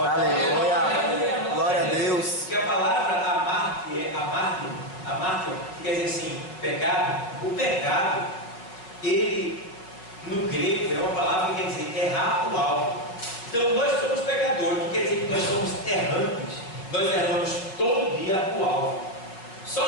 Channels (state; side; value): late; right; 5.3 ms